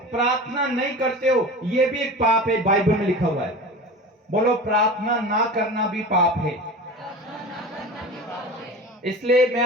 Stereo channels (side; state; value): both; normal; correlation 0.32